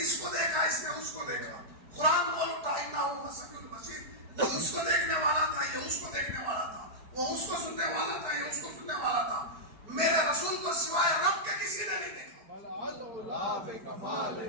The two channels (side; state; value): left; late; 4.5 ms